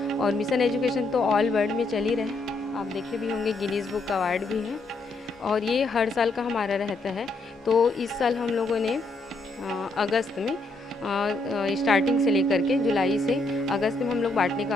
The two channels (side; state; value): right; quieter; 3.0 dB